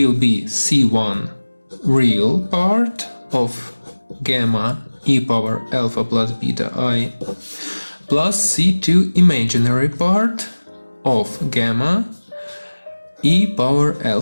be c1 real part of gamma e power alpha plus beta I plus c2 imaginary part of gamma e power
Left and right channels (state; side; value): inverted; both; correlation -1.00